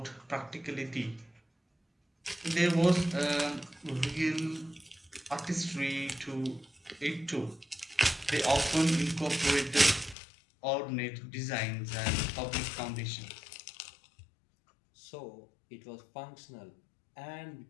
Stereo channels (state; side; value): drops out; right; at 10.2 s